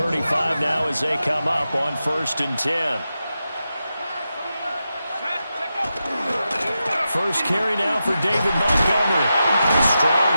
now as they come up on 1st and 10. First carry now for David Montgomery. Strong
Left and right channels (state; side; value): inverted; both; correlation -0.90